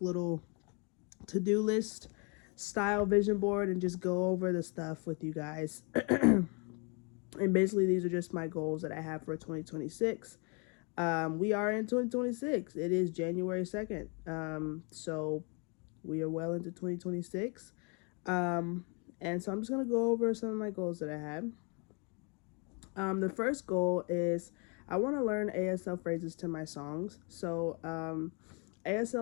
little to-do list style vision board and just go over the stuff with you guys. And basically these are just my goals that I have for 2026. We are in 2026. It is January 2nd. So we are well into 2026. And so I'm just going to go over some of my goals that I had. The first goal is I want to learn ASL phrases to my songs. So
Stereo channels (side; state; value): right; quieter; 33.8 dB